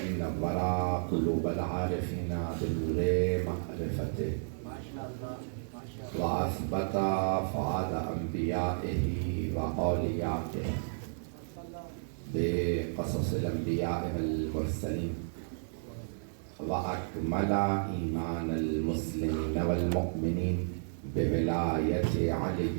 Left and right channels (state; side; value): silent; left; digital silence